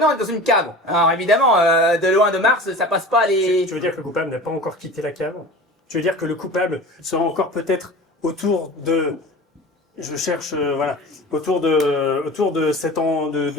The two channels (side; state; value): both; normal; correlation 0.36